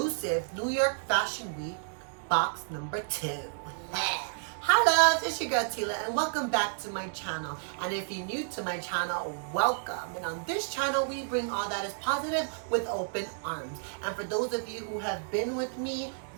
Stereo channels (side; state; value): left; silent; digital silence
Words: New York Fashion Week box number 2. Hi loves, it's your girl Tila and welcome back to my channel. And if you're new to my channel, welcome. And on this channel, we bring all that is positive with open arms. And for those of you who have been with me,